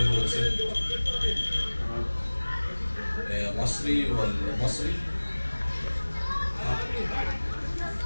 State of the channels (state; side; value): inverted; both; correlation -1.00